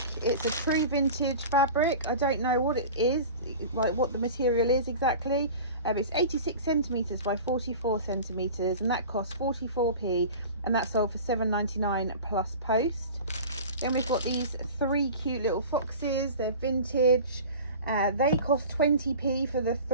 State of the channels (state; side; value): inverted; both; correlation -0.36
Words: It's a true vintage fabric. I don't know what it is, like what the material is exactly. It's 86 centimetres by 44 centimetres, and that costs 44p, and that sold for £7.99 plus post. Then we've got these 3 cute little foxes. They're vintage. They cost 20p for the